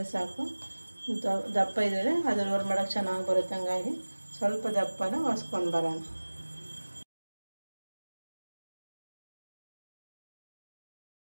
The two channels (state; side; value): inverted; both; correlation -1.00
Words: ಸಾಕು. ದಪ್ಪ ಇದ್ದರೆ ಅದು ರೋಲ್ ಮಾಡೋಕ್ಕೆ ಚೆನ್ನಾಗಿ ಬರುತ್ತೆ, ಹಂಗಾಗಿ ಸ್ವಲ್ಪ ದಪ್ಪನ ಒರೆಸ್ಕೊಂಡು ಬರೋಣ.